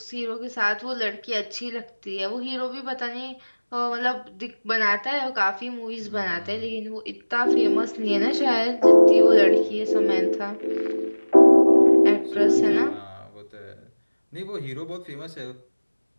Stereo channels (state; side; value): inverted; both; correlation -1.00